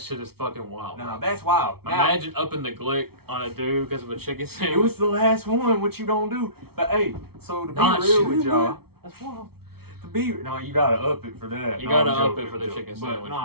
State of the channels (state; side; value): late; left; 0.95 ms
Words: is fucking wild. Nah, that's wild. Imagine upping the glick on a dude because of a chicken sandwich. It was the last one, what you don't do. But hey, so to be real with y'all, that's wild. No, you gotta up it for that. You gotta up it for the chicken sandwich.